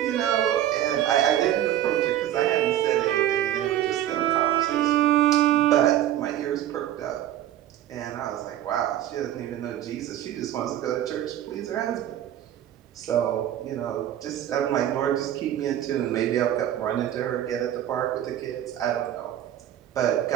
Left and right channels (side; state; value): left; quieter; 12.0 dB